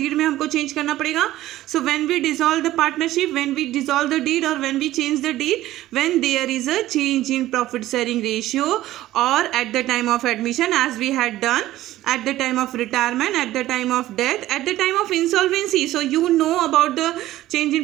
में हमको चेंज करना पड़ेगा. So when we dissolve the partnership, when we dissolve the deed और when we change the deed, when there is a change in profit sharing ratio और at the time of admission as we had done, at the time of retirement, at the time of death, at the time of insolvency. So you know about the change in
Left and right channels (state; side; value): quieter; left; 15.1 dB